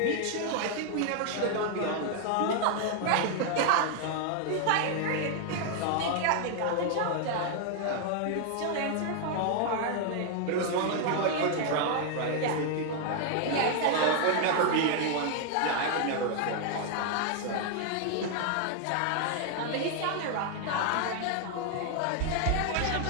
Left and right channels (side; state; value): both; different; correlation 0.00